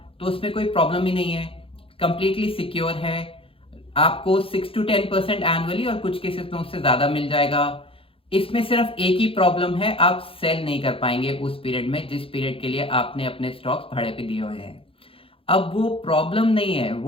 तो उसमें कोई प्रॉब्लम ही नहीं है, कंप्लीटली सिक्योर है। आपको 6 to 10% एनुअली और कुछ केसेस में उससे ज्यादा मिल जाएगा। इसमें सिर्फ एक ही प्रॉब्लम है, आप सेल नहीं कर पाएंगे उस पीरियड में जिस पीरियड के लिए आपने अपने स्टॉक्स भाड़े पे दिए हुए हैं। अब वो प्रॉब्लम नहीं है,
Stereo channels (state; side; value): late; right; 0.27 ms